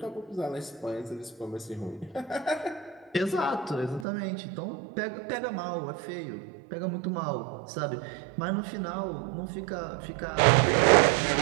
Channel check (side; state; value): left; drops out; at 4.0 s